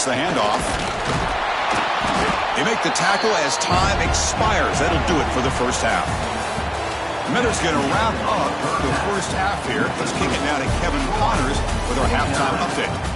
the handoff. They make the tackle as time expires. That'll do it for the first half. Miller's going to wrap up the first half here. Let's kick it now to Kevin Connors with our halftime update.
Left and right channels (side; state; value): both; identical; correlation 1.00